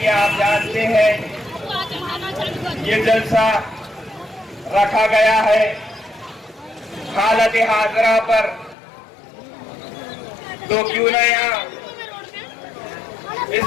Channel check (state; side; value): drops out; right; at 8.8 s